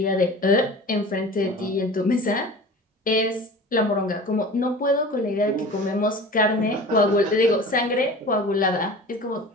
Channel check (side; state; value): both; normal; correlation 0.38